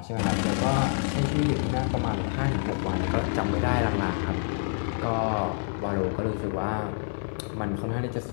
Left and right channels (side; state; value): right; silent; digital silence